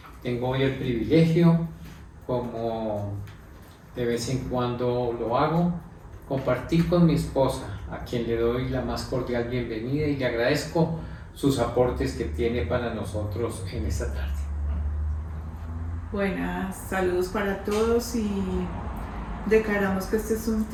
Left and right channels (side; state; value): both; identical; correlation 1.00